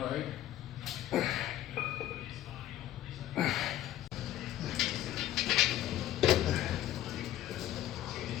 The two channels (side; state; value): right; quieter; 13.3 dB